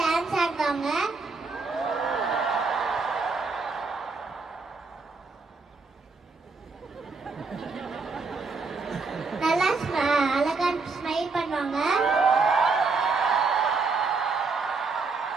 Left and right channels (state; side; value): quieter; left; 4.2 dB